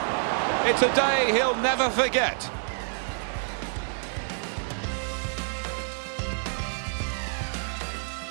It's a day he'll never forget.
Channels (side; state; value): left; silent; digital silence